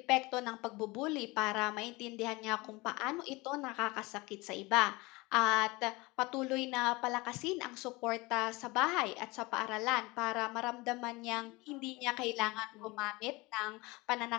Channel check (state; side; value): quieter; right; 23.4 dB